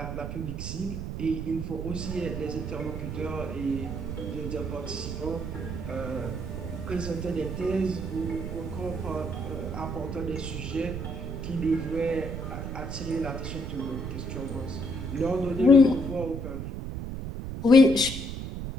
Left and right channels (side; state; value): right; noise; rumble, 5 dB below the sound